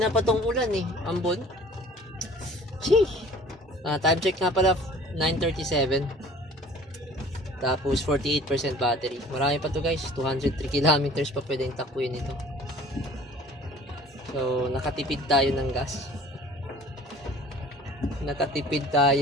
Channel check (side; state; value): both; normal; correlation 0.49